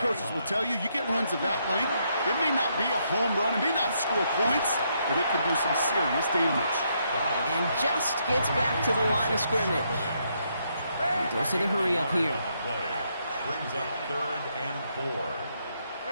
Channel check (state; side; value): inverted; both; correlation -0.76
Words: coaches will tell you, you get runs of that length, it may not be a home run, it may not score points, but it can do some serious damage. And just gets back to the line of scrimmage. He goes to the hurry up here. Brings up 3rd and 4.